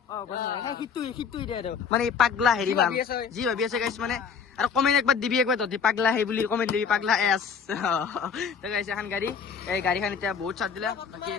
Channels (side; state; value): right; quieter; 6.4 dB